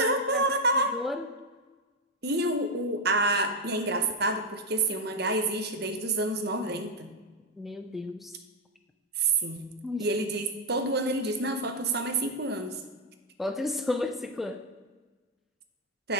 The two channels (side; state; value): both; normal; correlation 0.04